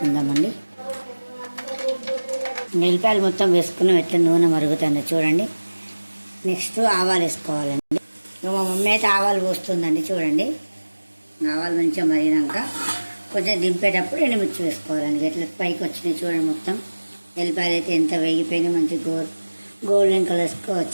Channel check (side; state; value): both; inverted; correlation -1.00